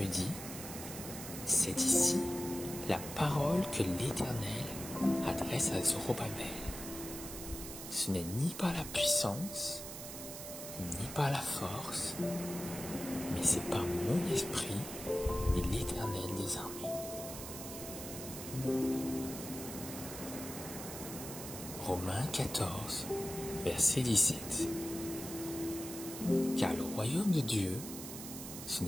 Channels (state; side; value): noise; right; hiss, 9 dB below the sound